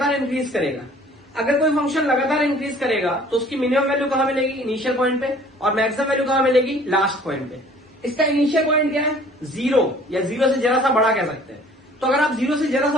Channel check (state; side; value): normal; both; correlation 0.52